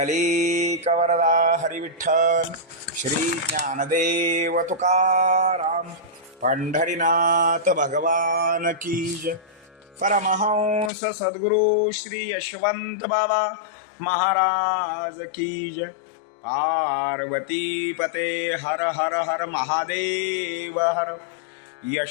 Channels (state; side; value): drops out; right; at 10.9 s